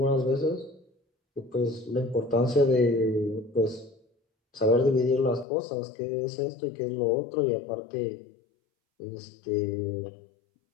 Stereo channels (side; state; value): right; drops out; at 5.5 s